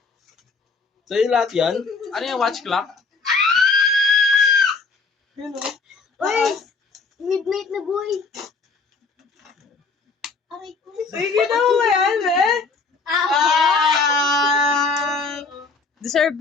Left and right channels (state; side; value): quieter; right; 4.3 dB